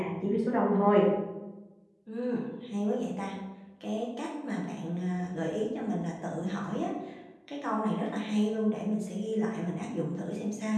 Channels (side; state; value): both; identical; correlation 1.00